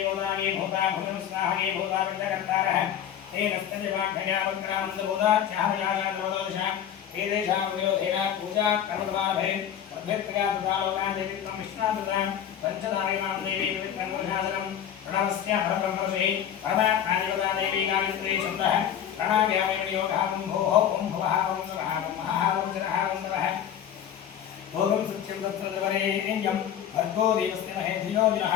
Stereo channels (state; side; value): quieter; right; 9.6 dB